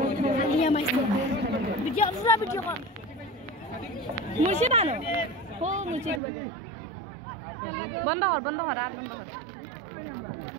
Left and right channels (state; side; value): drops out; left; at 6.2 s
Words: আমাই ভিডিও কর মুর্শিদ আনো ও মুর্শিদ বন্ধ কর আর বন্ধ কর